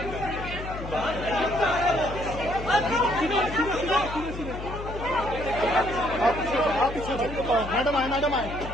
मैडम आए मैडम आए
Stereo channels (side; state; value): left; noise; hum, 9 dB below the sound